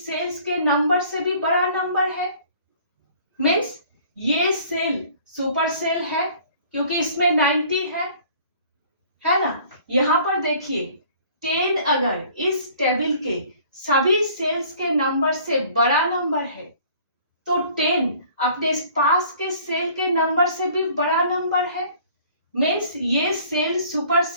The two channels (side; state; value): both; inverted; correlation -0.53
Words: के नंबर से भी बड़ा नंबर है। मीन्स ये सेल सुपर सेल है क्योंकि इसमें 90 है ना। यहां पर देखिए, 10 अगर इस टेबल के सभी सेल्स के नंबर से बड़ा नंबर है तो 10 अपने पास के सेल के नंबर से भी बड़ा नंबर है। मीन्स ये सेल सुपर